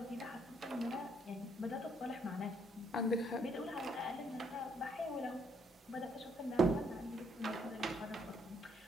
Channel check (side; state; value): both; normal; correlation 0.70